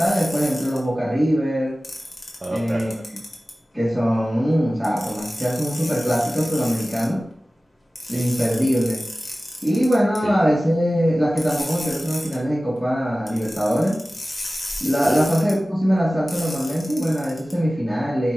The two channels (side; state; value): both; normal; correlation 0.96